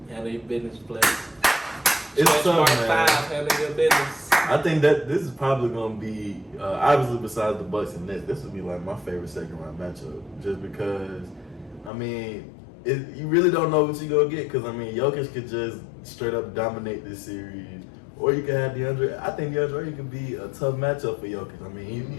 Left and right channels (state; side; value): drops out; right; at 11.9 s